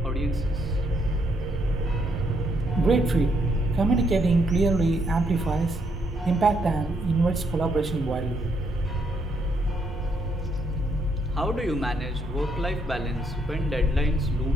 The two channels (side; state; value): both; normal; correlation 0.74